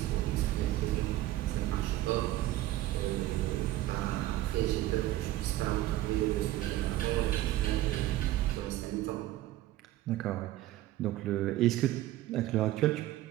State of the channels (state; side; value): quieter; left; 15.2 dB